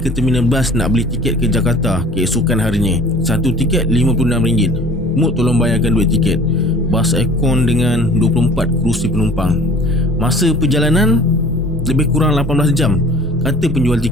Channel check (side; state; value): both; normal; correlation 0.48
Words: terminal bas nak beli tiket ke Jakarta keesokan harinya. Satu tiket RM56. Mut tolong bayarkan duit tiket. Bas aircon dengan 24 kerusi penumpang. Masa perjalanan lebih kurang 18 jam, kata penjual